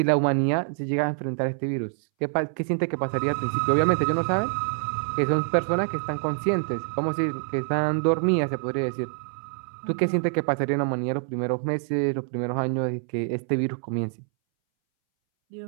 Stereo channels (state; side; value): silent; left; 61 dB below the other